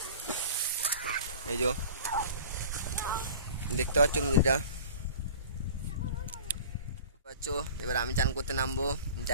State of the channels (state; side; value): inverted; both; correlation -0.42